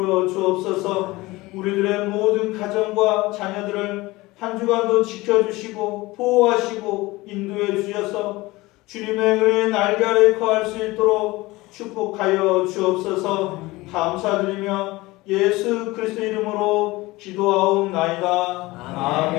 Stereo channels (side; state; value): right; quieter; 20.6 dB